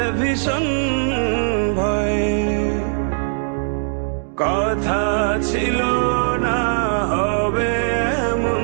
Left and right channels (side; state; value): left; silent; digital silence